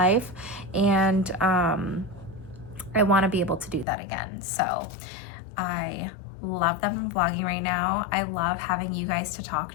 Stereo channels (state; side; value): drops out; right; at 3.9 s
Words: and I want to be able to do that again. So I love that I'm vlogging right now. I love having you guys to talk